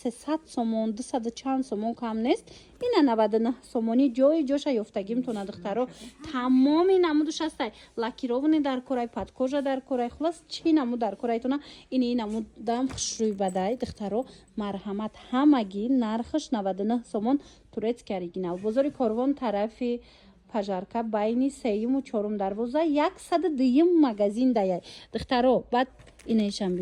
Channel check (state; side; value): identical; both; correlation 1.00